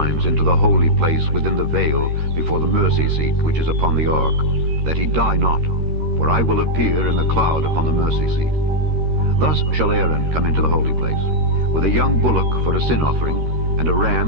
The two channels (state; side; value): late; left; 13 ms